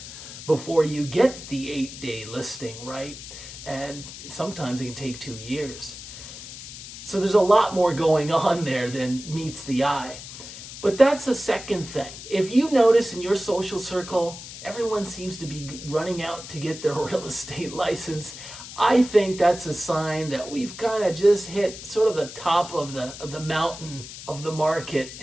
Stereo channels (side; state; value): left; noise; hiss, 13 dB below the sound